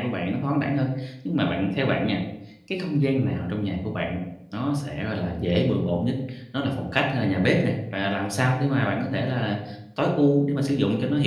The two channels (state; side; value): identical; both; correlation 1.00